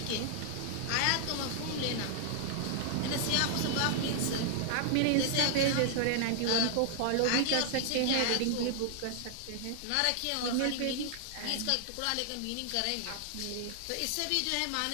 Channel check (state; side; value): different; both; correlation 0.00